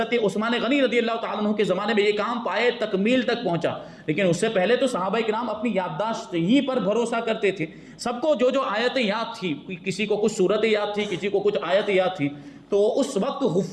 عثمان غنی رضی اللہ تعالیٰ عنہ کے زمانے میں یہ کام پائے تکمیل تک پہنچا. لیکن اس سے پہلے تو صحابہ کرام اپنی یادداشت ہی پر بھروسہ کرتے تھے. سب کو جو آیتیں یاد تھی، کسی کو کچھ صورتیں یاد تھی، کسی کو کچھ آیتیں یاد تھی، تو اس وقت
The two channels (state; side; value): identical; both; correlation 1.00